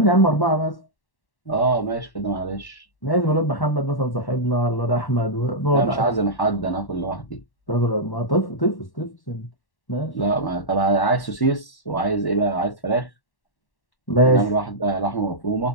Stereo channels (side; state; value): right; late; 1.1 ms